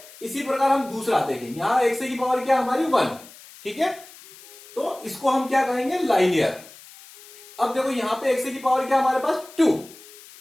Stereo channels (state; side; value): noise; left; hiss, 20 dB below the sound